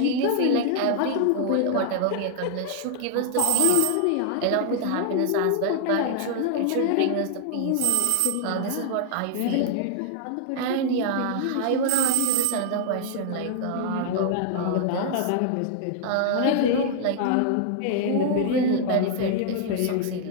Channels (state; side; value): different; both; correlation -0.01